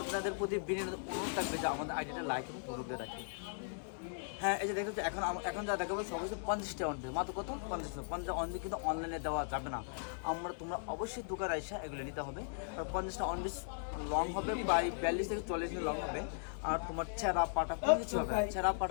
আপনাদের প্রতি বিনয় অনুরোধ থাকবে যে আমাদের আইডিয়াটা লাইক এবং ফলো দিয়ে রাখি। হ্যাঁ, এই যে দেখতে এখন যা দেখাবো সব কিছু 50টা অন পেজ, মাত্র কত 50 অন পেজ কিন্তু অনলাইনে দেওয়া যাবে না। তোমরা অবশ্যই দোকানে এসে এগুলো নিতে হবে। আর 50টা অন পেজ লং হবে, প্রায় 42 থেকে 40 মিনিট লং হবে। আর তোমার ছেঁড়া পাটা কোনো কিছু হবে, ছেঁড়া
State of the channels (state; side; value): silent; right; digital silence